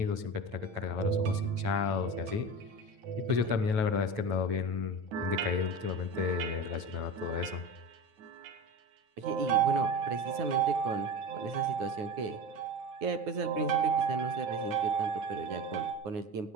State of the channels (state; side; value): late; left; 9.3 ms